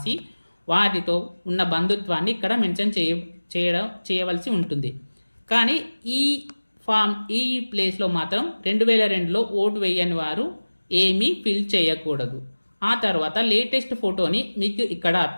వారితో ఉన్న బంధుత్వాన్ని ఇక్కడ మెన్షన్ చేయవలసి ఉంటుంది. కానీ ఈ ప్లేస్లో మాత్రం 2002లో ఓటు వేయని వారు ఏమీ ఫిల్ చేయకూడదు. ఆ తర్వాత లేటెస్ట్ ఫోటోని మీకు ఇక్కడ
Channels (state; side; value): inverted; both; correlation -1.00